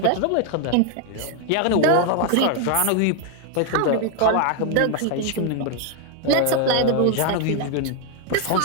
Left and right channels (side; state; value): both; different; correlation 0.00